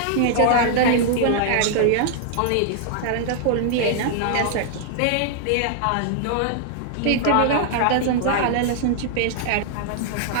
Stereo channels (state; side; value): different; both; correlation -0.01